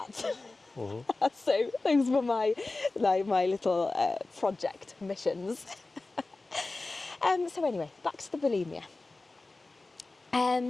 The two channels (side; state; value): right; quieter; 3.3 dB